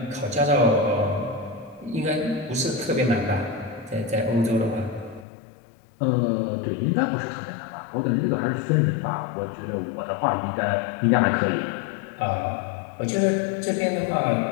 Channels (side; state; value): right; drops out; at 5.2 s